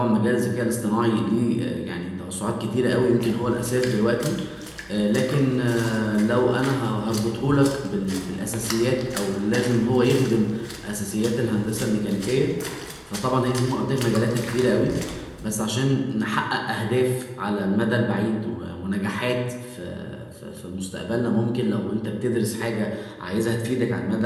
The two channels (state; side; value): identical; both; correlation 1.00